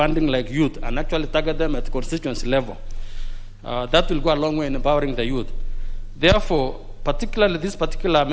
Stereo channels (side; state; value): both; identical; correlation 1.00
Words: like youth and actually target them at constituency level, that will go a long way in empowering the youth. Therefore, particularly this particular